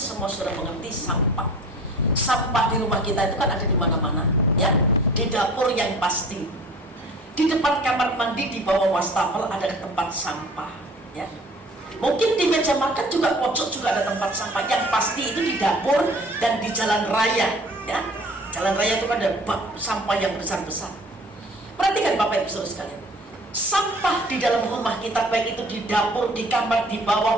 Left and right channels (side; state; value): both; normal; correlation 0.48